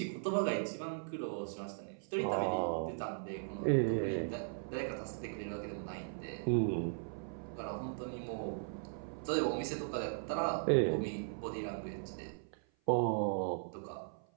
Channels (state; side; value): silent; left; 52 dB below the other